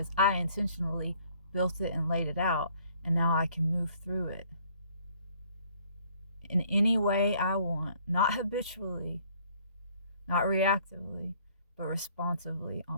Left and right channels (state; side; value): inverted; both; correlation -0.61